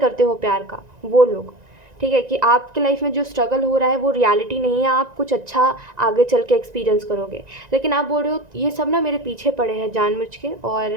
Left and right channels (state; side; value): late; left; 1.9 ms